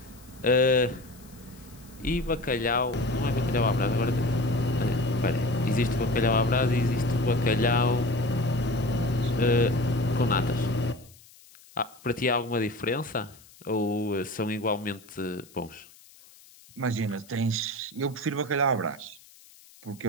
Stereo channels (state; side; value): noise; left; hiss, 24 dB below the sound